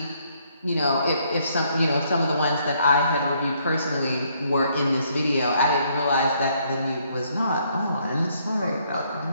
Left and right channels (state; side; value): inverted; both; correlation -0.69